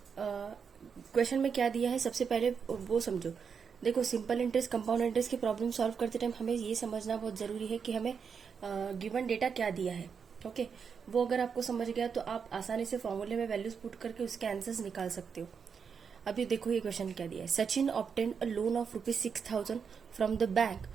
क्वेश्चन में क्या दिया है, सबसे पहले वो समझो। देखो, सिंपल इंटरेस्ट कंपाउंड इंटरेस्ट की प्रॉब्लम सॉल्व करते टाइम हमें ये समझना बहुत जरूरी है कि हमें गिवन डेटा क्या दिया है। ओके वो अगर आपको समझ गया तो आप आसानी से फॉर्मूले में वैल्यूज पुट करके उसके आंसर्स निकाल सकते हो। अभी देखो ये क्वेश्चन क्या दिया है। Sachin obtain a loan of ₹6,000 from the bank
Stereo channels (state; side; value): quieter; left; 6.3 dB